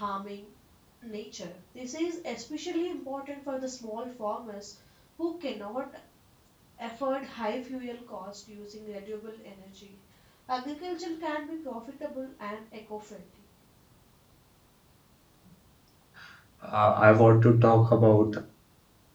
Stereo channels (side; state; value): both; identical; correlation 1.00